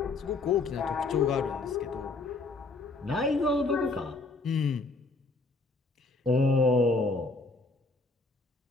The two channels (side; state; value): right; quieter; 3.6 dB